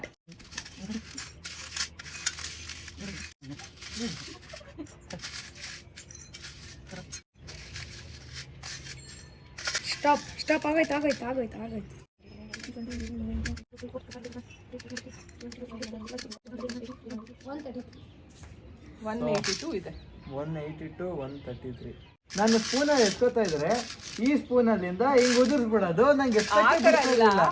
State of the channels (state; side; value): identical; both; correlation 1.00